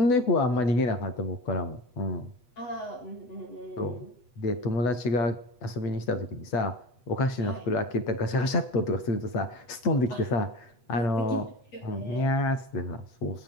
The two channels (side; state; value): right; late; 8.1 ms